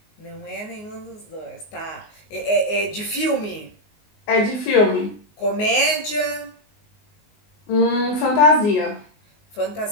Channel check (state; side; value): late; right; 19 ms